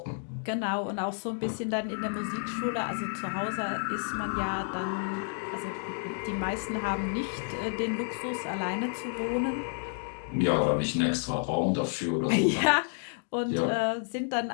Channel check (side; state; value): right; silent; 58 dB below the other